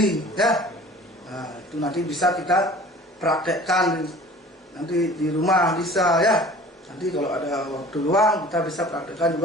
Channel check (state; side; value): normal; both; correlation 0.45